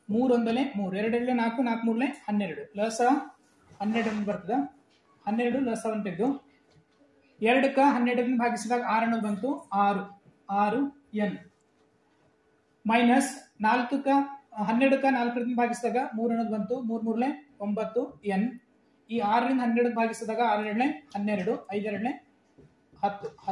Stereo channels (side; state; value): both; identical; correlation 1.00